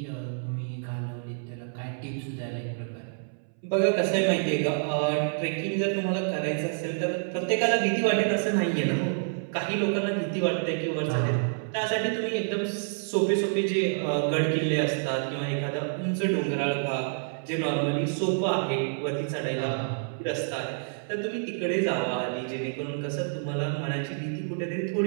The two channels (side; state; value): left; silent; 59 dB below the other